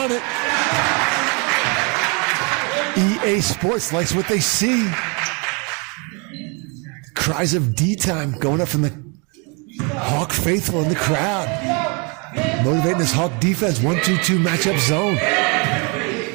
it. EA Sports likes what they see. Cries of D time going up from the Hawk faithful in the crowd. Motivating this Hawk defense. 1-2-2 matchup zone.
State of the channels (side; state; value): left; quieter; 32.7 dB